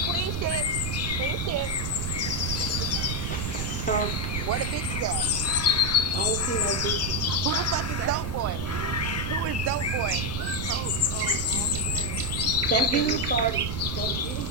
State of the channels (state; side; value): noise; right; rumble, 3 dB below the sound